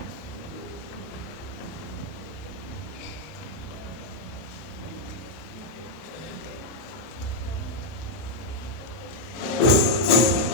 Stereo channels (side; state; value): right; late; 31 ms